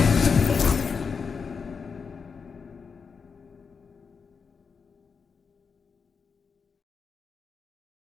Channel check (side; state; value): right; quieter; 5.6 dB